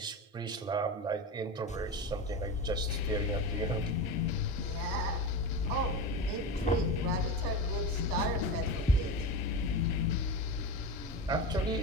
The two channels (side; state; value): both; normal; correlation 0.23